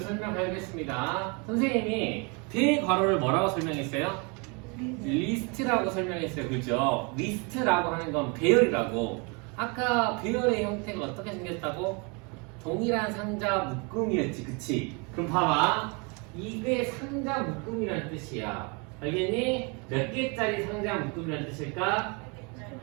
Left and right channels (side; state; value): left; quieter; 31.8 dB